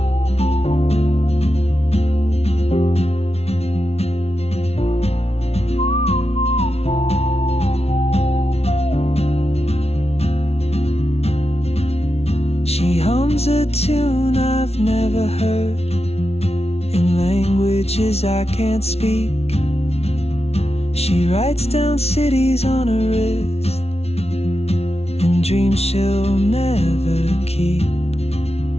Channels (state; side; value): late; right; 0.30 ms